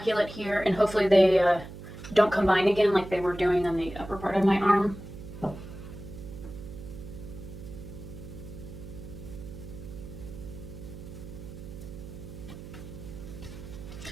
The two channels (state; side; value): noise; right; hum, 13 dB below the sound